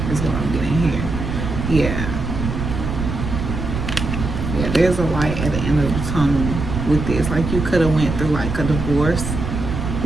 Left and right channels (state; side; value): noise; right; rumble, 4 dB below the sound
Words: is what I'm getting here. Yeah, there's a light at the end of the tunnel with this. Like, you could have went through like a divorce